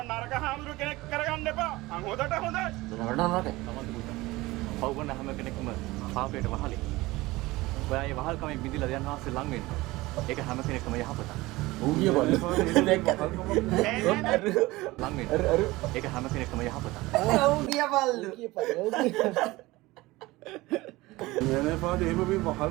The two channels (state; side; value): quieter; left; 20.0 dB